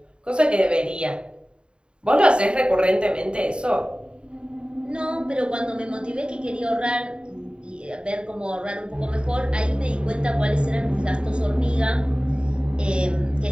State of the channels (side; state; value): left; late; 0.053 ms